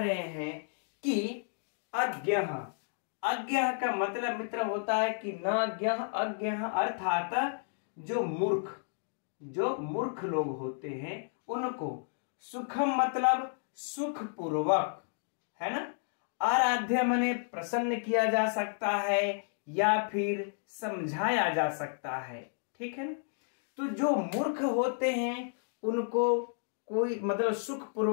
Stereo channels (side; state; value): right; silent; digital silence